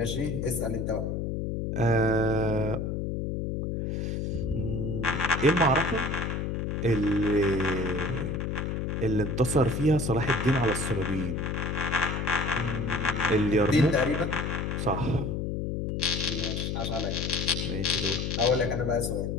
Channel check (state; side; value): noise; left; hum, 2 dB below the sound